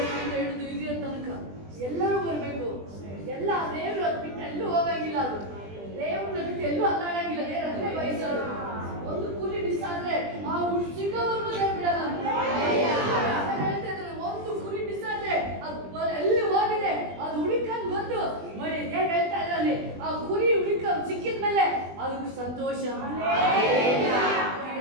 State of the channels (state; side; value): late; left; 20 ms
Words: ಹಿಡಿದು ಹಿರಿಯ ತನಕ ಎಲ್ಲರೂ ಬರಬೇಕು. ಎಲ್ಲ ದೇವರು ಅದು ಬಿಟ್ಟು ಎಲ್ಲೂ ಹೋಗಂಗಿಲ್ಲ. ಅದು ದೇವ್ರನ್ನ ಬಿಟ್ಟು ಎಲ್ಲೂ ಅಲ್ಲಾಡಂಗಿಲ್ಲ. ದೇವ್ರು ಅದನ್ನೇ ಬಯಸೋದು. ಒಂದು ಕುರಿ ಮಿಸ್ ಆದ್ರೆ ಆ ಸಿಗೋವರೆಗೂ ಬಿಡಲ್ಲ. ಹೇಳ್ತಾ ಇದ್ದಾರೆ, ಒಂದು ಕುರಿ ಮಿಸ್ ಆದ್ರೆ ಅದು ಎಲ್ಲಿ ಹೋಗಿದೆ ಅದು ಹುಡುಕಂಡ್ ಬಂದು ನೋಡಿ ಹೇಗೆ ಹೇಳ್ತಾ ಇದ್ರಲ್ಲಿ, ಆ ಕುರಿ ಸಿಕ್ಕಿದ ಮೇಲೆ ಅದಕ್ಕೆ ಸಂತೋಷ.